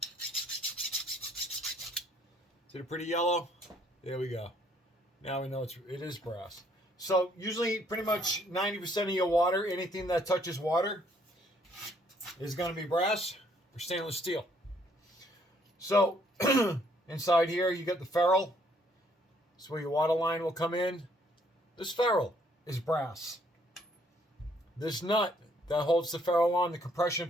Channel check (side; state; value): both; normal; correlation 0.66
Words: Is it pretty yellow? There we go. Now we know it is brass. So usually pretty much 90% of your water, anything that touches water, is going to be brass or stainless steel. So inside here you got the ferrule. That's where your water line will come in. This ferrule is brass. This nut that holds the ferrule on, the